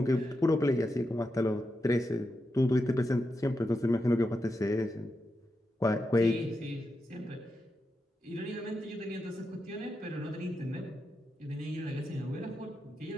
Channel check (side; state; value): both; normal; correlation 0.87